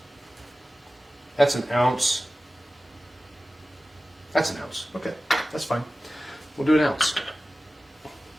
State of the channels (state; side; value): normal; both; correlation 0.95